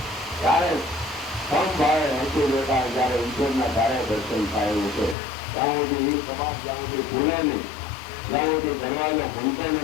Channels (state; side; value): drops out; right; at 5.2 s